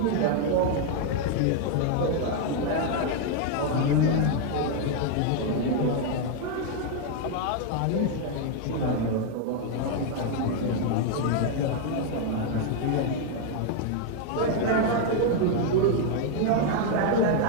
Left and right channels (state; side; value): different; both; correlation 0.00